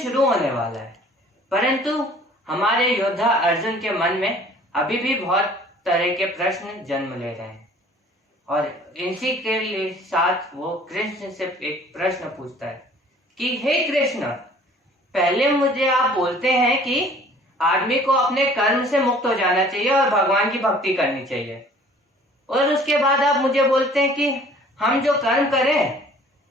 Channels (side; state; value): both; normal; correlation 0.52